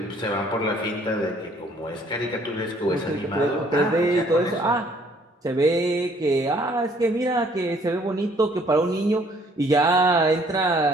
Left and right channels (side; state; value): both; normal; correlation 0.61